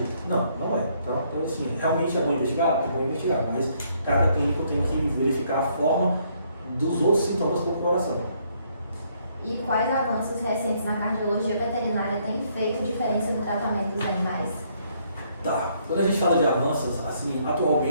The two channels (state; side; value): inverted; both; correlation -0.69